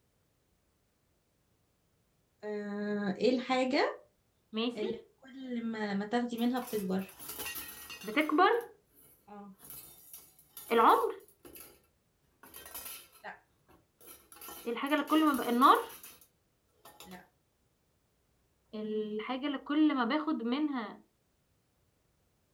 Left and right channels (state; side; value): identical; both; correlation 1.00